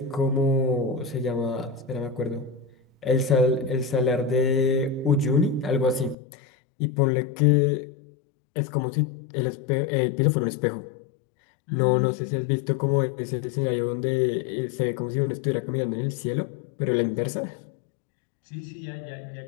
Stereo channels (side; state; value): right; drops out; at 6.2 s